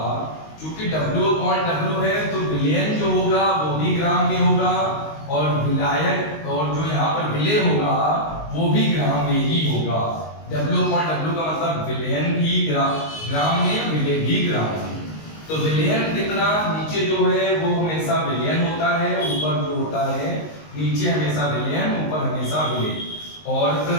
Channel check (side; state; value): right; late; 19 ms